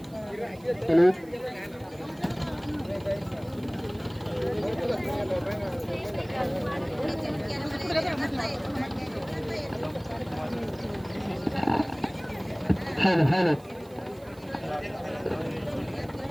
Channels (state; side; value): noise; right; hiss, 26 dB below the sound